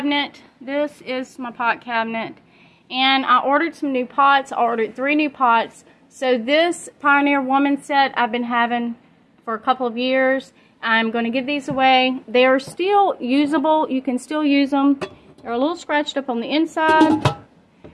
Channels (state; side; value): identical; both; correlation 1.00